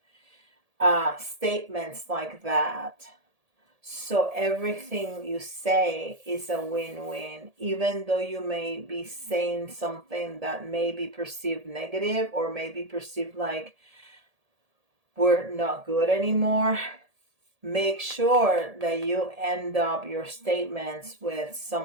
statements like that, So everything you say is a win-win, even though you may be saying something that may be perceived negative or may be perceived like we're not good anymore. Make sure that you end up your statements with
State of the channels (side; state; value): left; late; 1.8 ms